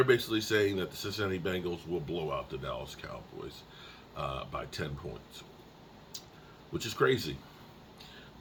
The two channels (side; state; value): both; identical; correlation 1.00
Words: basically saying that the Cincinnati Bengals will blow out the Dallas Cowboys by 10 points, which is crazy.